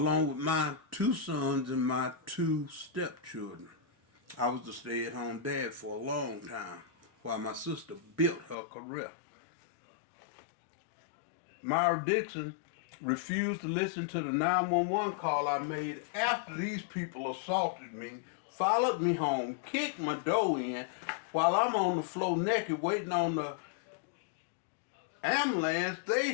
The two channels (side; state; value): right; drops out; at 8.6 s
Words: with my 2 sons and my 2 stepchildren. I was the stay-at-home dad for a long time while my sister built her career. Myra Dixon refused to listen to the 911 call I made after these people assaulted me, followed me home, kicked my door in while I'm on the floor naked waiting on the ambulance.